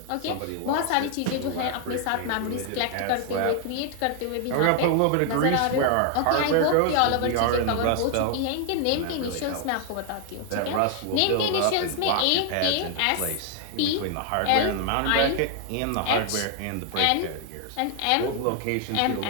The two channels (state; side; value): different; both; correlation 0.00